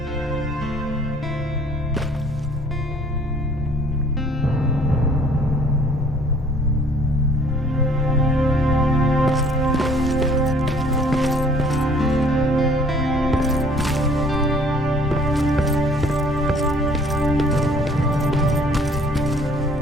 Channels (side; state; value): both; normal; correlation 0.56